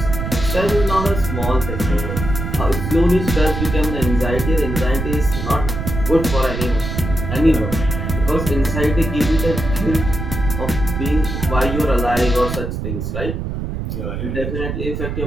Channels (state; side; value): noise; right; rumble, 4 dB below the sound